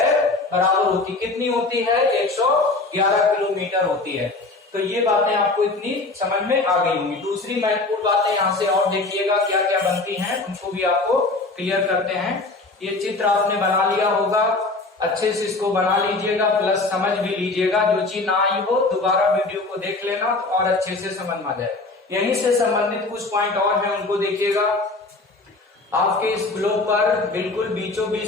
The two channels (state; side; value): quieter; right; 3.4 dB